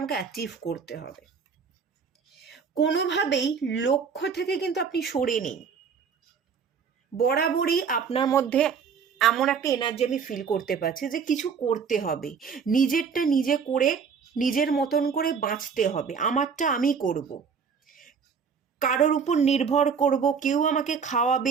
অ্যাচিভ করতে হবে। কোনোভাবেই লক্ষ্য থেকে কিন্তু আপনি সরে নেই। বরাবরই আপনার মধ্যে এমন একটা এনার্জি আমি ফিল করতে পারছি যে কিছু করতে হবে, নিজেরটা নিজে করে নিজের মতন করে বাঁচতে হবে, আমারটা আমি করব, কারোর উপর নির্ভর করব, কেউ আমাকে খাওয়াবে,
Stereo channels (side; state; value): left; quieter; 6.2 dB